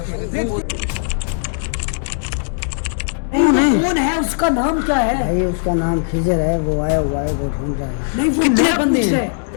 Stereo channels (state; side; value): silent; right; 67 dB below the other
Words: हो। कौन है, उसका नाम क्या है? भाई उसका नाम खिजर है, वो आया हुआ है, वो ढूंढ रहा है। नहीं वो कितने मेरा बंदे पूछ हैं? रहा है,